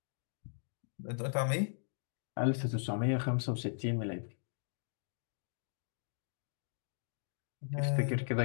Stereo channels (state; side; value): silent; right; digital silence